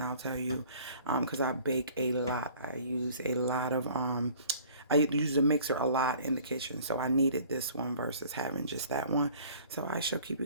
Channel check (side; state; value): both; inverted; correlation -0.51